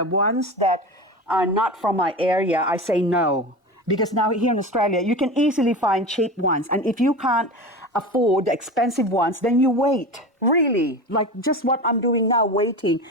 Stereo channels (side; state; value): both; normal; correlation 0.28